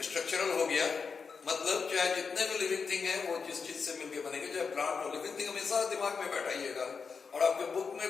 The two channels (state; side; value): quieter; right; 5.4 dB